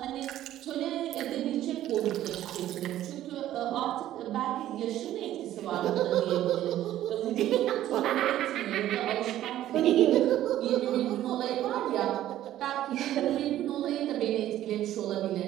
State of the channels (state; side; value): quieter; left; 13.0 dB